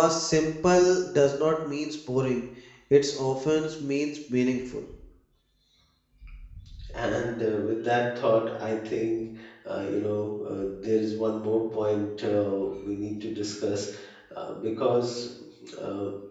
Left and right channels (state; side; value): identical; both; correlation 1.00